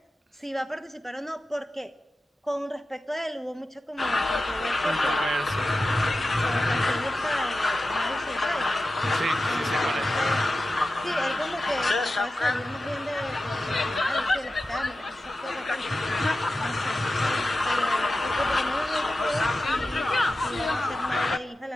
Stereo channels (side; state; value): both; normal; correlation 0.93